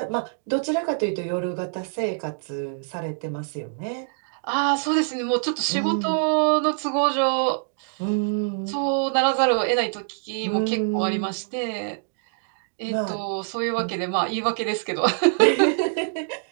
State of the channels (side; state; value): left; silent; digital silence